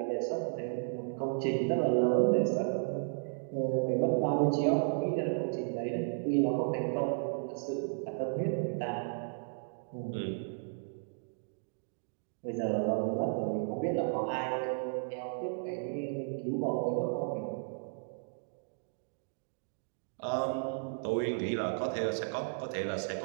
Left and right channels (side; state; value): left; silent; digital silence